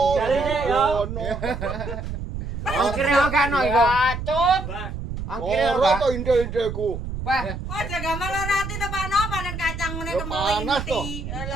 Jare yo. ono. Ongkire ora ono iku. Bacot. Ongkire Ora ora. to inde-indeku. Weh, Oh jaga malah rati to Pak No panen kacang ngene Ya, kemeling panas to. mati.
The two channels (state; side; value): noise; right; rumble, 7 dB below the sound